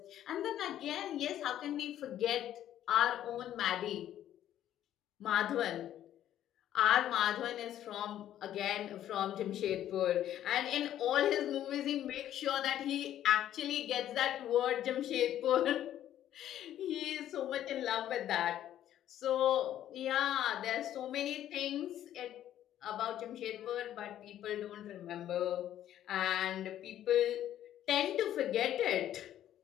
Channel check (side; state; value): right; quieter; 11.7 dB